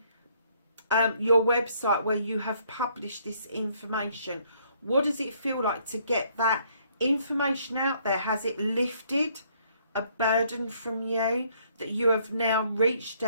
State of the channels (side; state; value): both; inverted; correlation -0.66